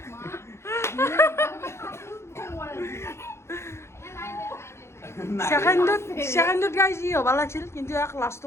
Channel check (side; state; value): right; late; 0.13 ms